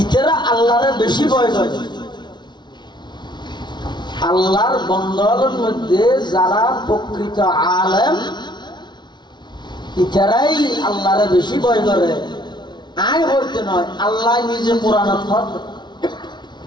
ইতারা আল্লাহরে বেশি ভয় করে। আল্লাহর বান্দাদের মধ্যে যারা প্রকৃত আলেম ইতারাই আল্লাহরে বেশি ভয় করে। আয় বলতে নয়, আল্লাহ নিজে কোরআনে ফরমান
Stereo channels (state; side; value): late; right; 0.21 ms